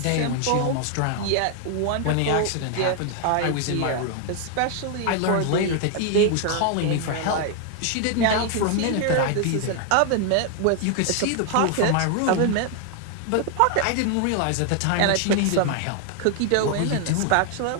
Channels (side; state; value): both; different; correlation 0.00